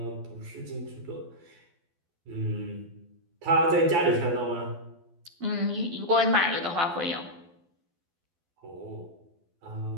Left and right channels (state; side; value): late; left; 12 ms